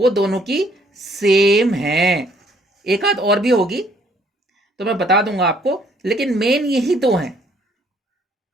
दोनों की सेम हैं। एक आध और भी होगी तो मैं बता दूंगा आपको, लेकिन मेन यही दो हैं।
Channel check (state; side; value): normal; both; correlation 0.64